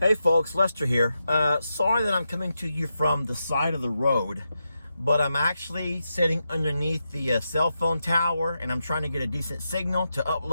folks, Lester here. Sorry that I'm coming to you from the side of the road, but I'm actually sitting underneath the cell phone tower and I'm trying to get a decent signal to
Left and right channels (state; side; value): inverted; both; correlation -0.87